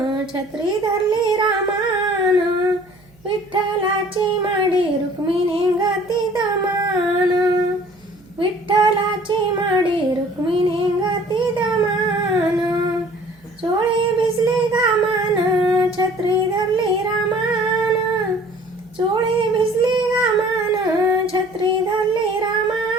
छत्री धरली रामान, विठ्ठलाची माडी रुक्मिणी गती दमान, विठ्ठलाची माडी रुक्मिणी गती दमान, चोळी भिजली घामान, छत्री धरली रामान, चोळी भिजली घामान, छत्री धरली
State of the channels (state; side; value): noise; right; hum, 29 dB below the sound